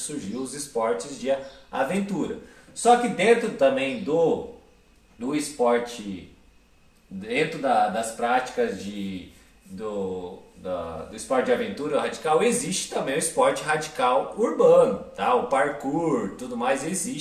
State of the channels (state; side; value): identical; both; correlation 1.00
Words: os esportes de aventura. Só que dentro também do esporte, dentro das práticas do esporte de aventura radical, existe também o esporte radical urbano, tá? O parkour, tudo mais,